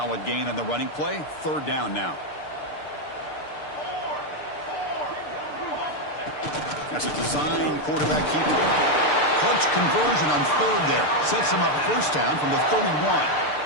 gain on the running play. Third down now. That's a design quarterback keeper. Clutch conversion on third there. Sets him up first down from the 31.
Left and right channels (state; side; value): late; right; 6.7 ms